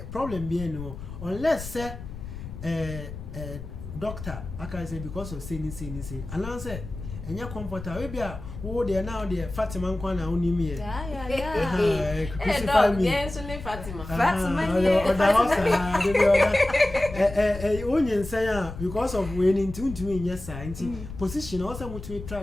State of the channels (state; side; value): noise; left; rumble, 11 dB below the sound